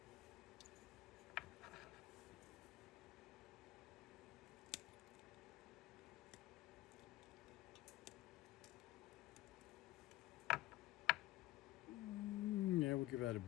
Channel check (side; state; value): right; quieter; 17.2 dB